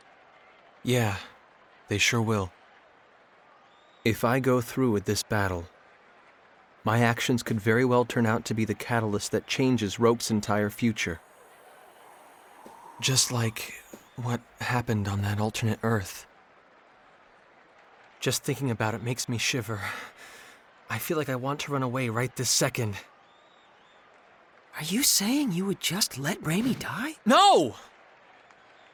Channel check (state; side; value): identical; both; correlation 1.00